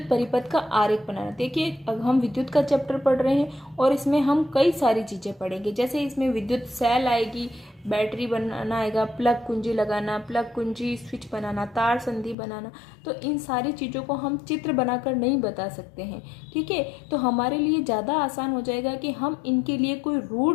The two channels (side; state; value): right; drops out; at 12.4 s